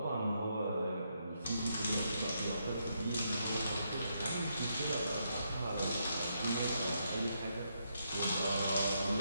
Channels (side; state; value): both; inverted; correlation -0.79